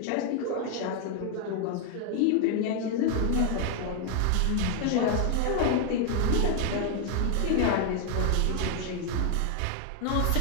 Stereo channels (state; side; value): different; both; correlation 0.00